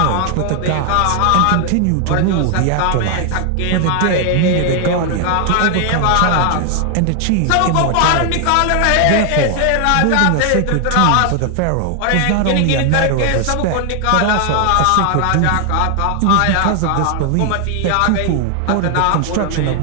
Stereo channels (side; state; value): both; different; correlation 0.00